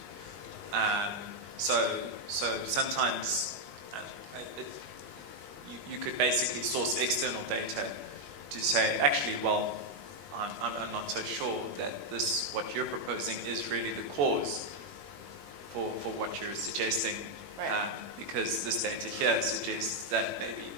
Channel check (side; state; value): left; late; 21 ms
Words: So sometimes you could basically source external data to say, actually, well, I'm not so sure that what you're proposing is really the cause for what you're suggesting, Right. because this data here suggests that maybe